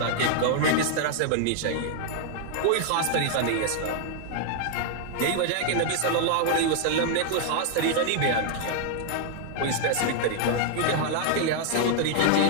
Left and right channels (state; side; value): different; both; correlation 0.00